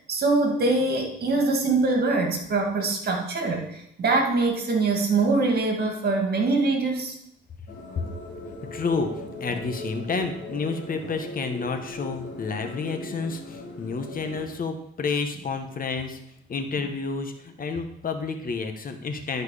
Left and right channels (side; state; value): both; normal; correlation 0.43